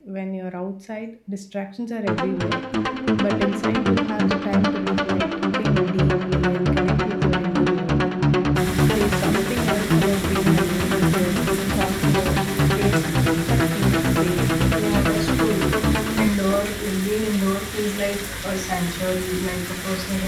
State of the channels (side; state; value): both; identical; correlation 1.00